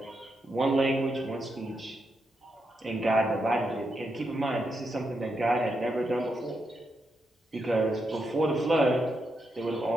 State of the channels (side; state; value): both; normal; correlation 0.83